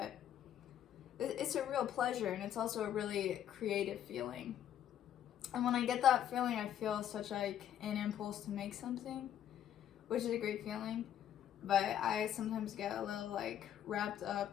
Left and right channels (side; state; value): right; quieter; 10.6 dB